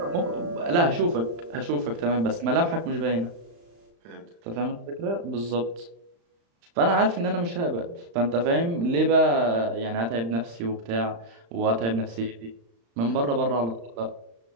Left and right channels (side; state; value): left; late; 35 ms